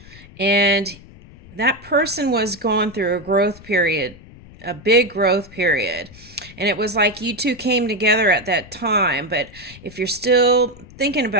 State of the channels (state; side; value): noise; left; rumble, 21 dB below the sound